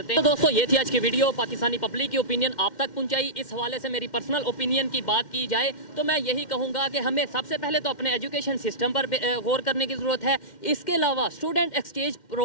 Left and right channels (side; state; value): right; late; 2.1 ms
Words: हैं। तो दोस्तों ये थी आज की वीडियो, पाकिस्तानी पब्लिक की ओपिनियन आप तक पहुंचाई। इस हवाले से मेरी पर्सनल ओपिनियन की बात की जाए तो मैं यही कहूँगा कि हमें सबसे पहले तो अपने एजुकेशन सिस्टम पर गौर करने की ज़रूरत है। इसके अलावा स्टूडेंट एक्सचेंज